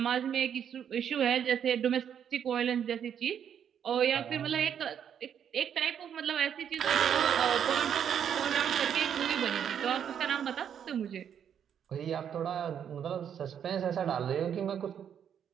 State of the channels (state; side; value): quieter; left; 8.6 dB